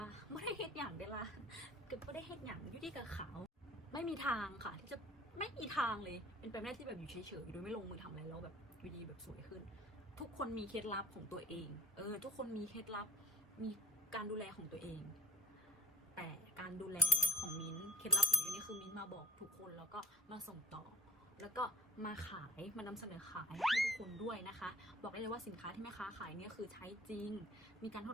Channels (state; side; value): normal; both; correlation 0.35